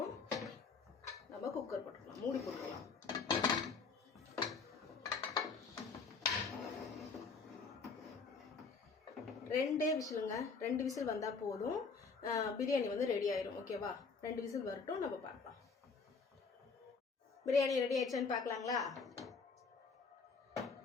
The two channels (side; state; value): right; quieter; 4.8 dB